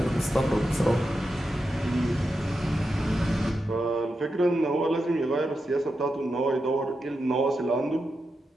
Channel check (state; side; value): normal; both; correlation 0.88